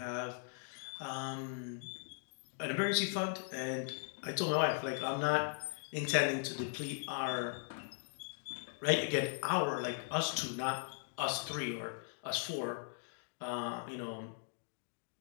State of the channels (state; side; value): silent; right; digital silence